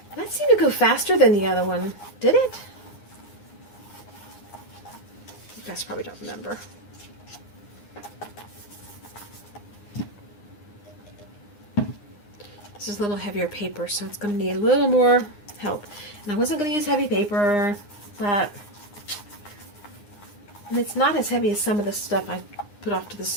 That seemed to go faster than the other one, did it? You guys probably don't remember. This is a little heavier paper, so it's going to need a little more help. And I wasn't going to use heavy paper, but and it's not as heavy as some of the stuff I put off to the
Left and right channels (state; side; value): late; right; 9.8 ms